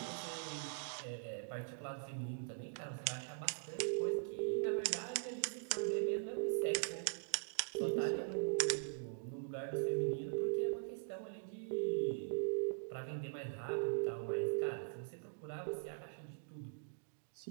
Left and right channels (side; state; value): left; silent; digital silence